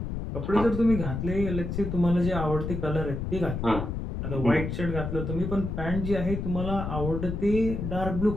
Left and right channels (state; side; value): noise; left; rumble, 4 dB below the sound